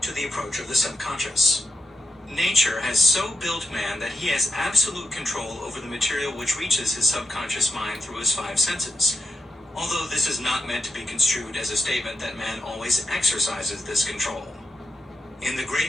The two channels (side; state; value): both; normal; correlation 0.86